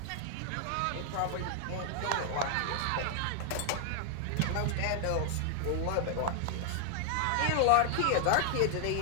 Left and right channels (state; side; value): different; both; correlation -0.01